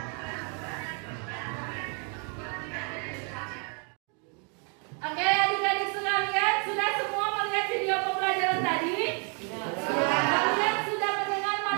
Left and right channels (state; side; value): quieter; left; 38.1 dB